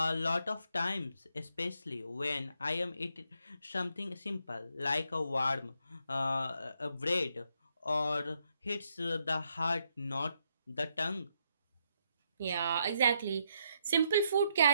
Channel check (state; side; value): inverted; both; correlation -0.77